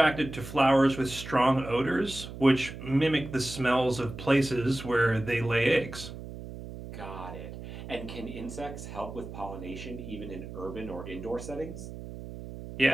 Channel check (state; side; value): noise; right; hum, 11 dB below the sound